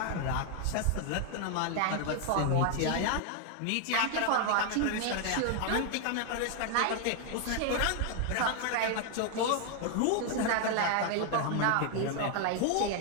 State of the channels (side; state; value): both; different; correlation 0.00